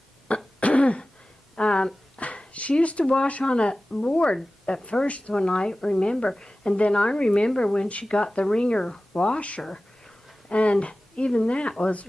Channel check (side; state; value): both; normal; correlation 0.96